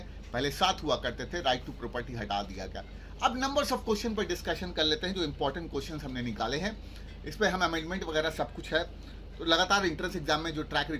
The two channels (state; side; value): identical; both; correlation 1.00